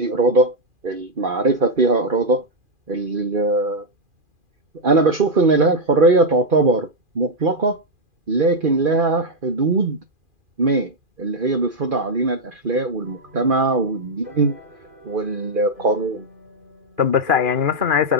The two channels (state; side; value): late; left; 2.4 ms